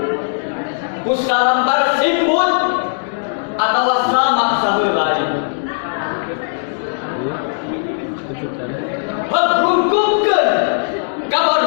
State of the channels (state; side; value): silent; right; digital silence